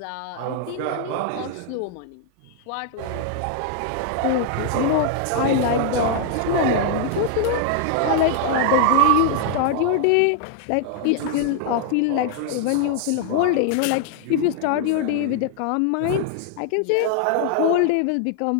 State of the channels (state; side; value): different; both; correlation 0.00